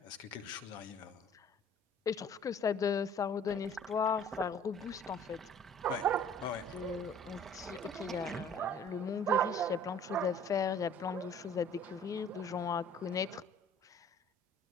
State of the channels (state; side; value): normal; both; correlation 0.52